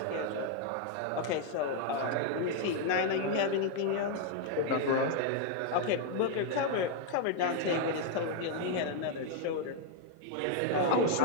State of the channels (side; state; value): both; different; correlation 0.00